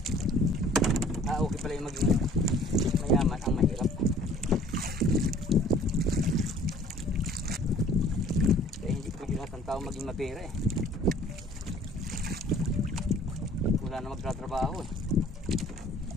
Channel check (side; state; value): both; normal; correlation 0.53